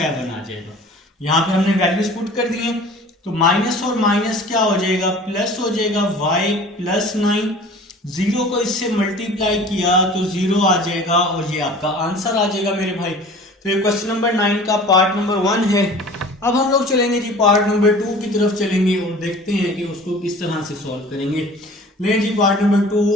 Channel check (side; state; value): both; normal; correlation 0.44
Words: आ जाएगा। यहां पे हमने वैल्यूज पुट कर दिए। तो माइनस और माइनस क्या हो जाएगा, प्लस हो जाएगा। y + 9, 0 को इससे मल्टीप्लाई किया तो 0 आ जाएगा और ये आपका आंसर आ जाएगा मेरे भाई। तो ये क्वेश्चन नंबर 9 का पार्ट नंबर 1 है। अब हम लोग चलेंगे जी पार्ट नंबर 2 की तरफ चलेंगे और देखते हैं कि उसको किस तरह से सॉल्व करेंगे। ले जी पार्ट नंबर 2